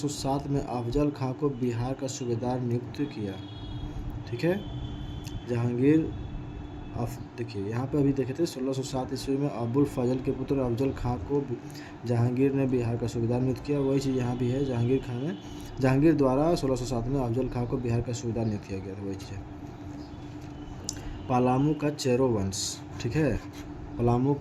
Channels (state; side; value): identical; both; correlation 1.00